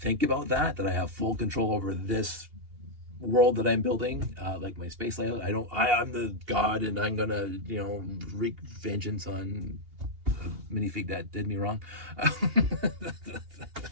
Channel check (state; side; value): late; left; 2.8 ms